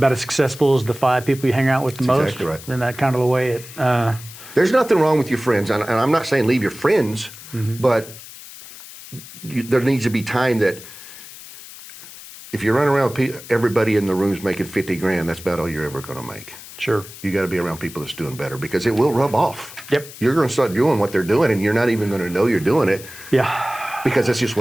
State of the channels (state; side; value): noise; left; hiss, 16 dB below the sound